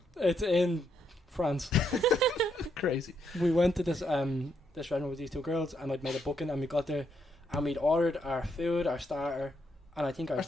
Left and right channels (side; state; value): both; normal; correlation 0.77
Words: It's in France. Crazy. We went to this restaurant with these 2 girls, and I'd made a booking, and we got there, and we'd ordered our food, our starter, and I think Our